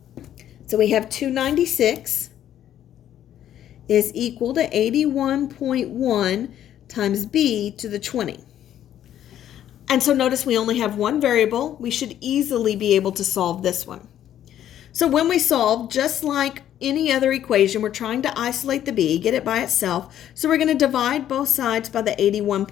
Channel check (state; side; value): quieter; right; 11.1 dB